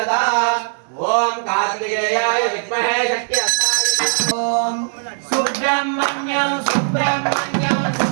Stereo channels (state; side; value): silent; left; digital silence